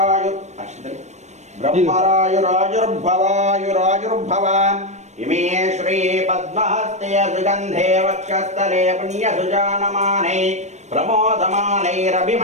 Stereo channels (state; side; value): late; left; 0.33 ms